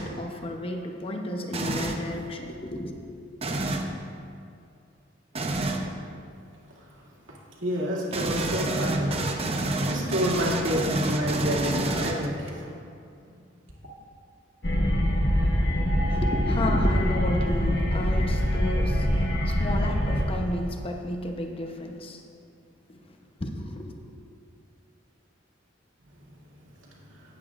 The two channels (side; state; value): both; normal; correlation 0.71